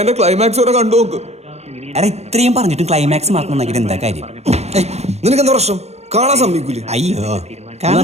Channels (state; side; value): late; left; 0.31 ms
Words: ക്ലൈമാക്സ് വരെ കണ്ടു നോക്ക്. എടാ, ഇത്രയും പറഞ്ഞിട്ടും ക്ലൈമാക്സ് മറക്കണമെങ്കിൽ എന്താ കാര്യം? നിനക്ക് എന്താ പ്രശ്നം? കാണാൻ സമ്മതിക്കൂലേ? അയ്യോ,